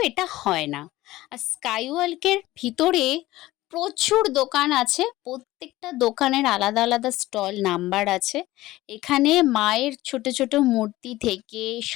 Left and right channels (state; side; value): quieter; right; 17.2 dB